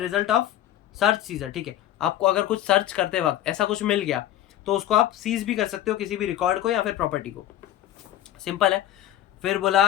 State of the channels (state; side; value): quieter; right; 12.4 dB